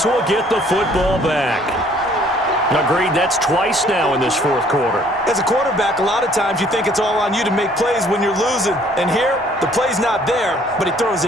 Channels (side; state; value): both; normal; correlation 0.59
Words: will get the football back. Agreed, that's twice now in this 4th quarter. As a quarterback, a lot of times you think it's all on you to make plays when you're losing. And here, the play's not there, but he throws